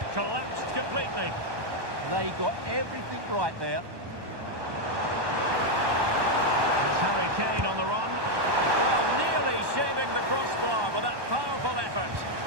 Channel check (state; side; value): late; left; 1.2 ms